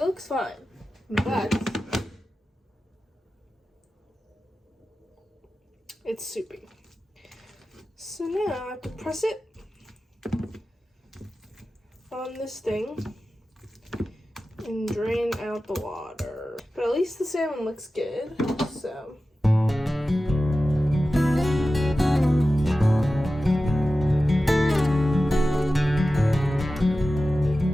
looks fine, but it's soupy. So now I have to press it on this thing and drain out the water. But at least the salmon looks good, so.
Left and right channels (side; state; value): both; normal; correlation 0.94